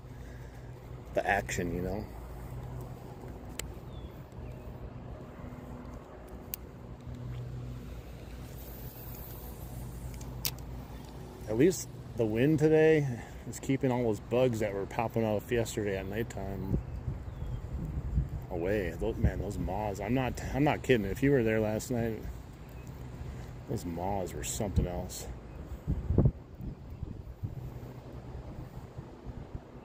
action, At least the wind today is keeping all those bugs that were popping off yesterday at nighttime away. Those moths. I'm not kidding. If you were there last night, those moths were something else. I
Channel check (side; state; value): both; identical; correlation 1.00